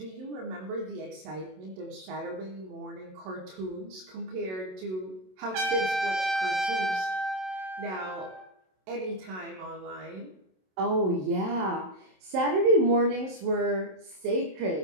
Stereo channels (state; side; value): late; left; 27 ms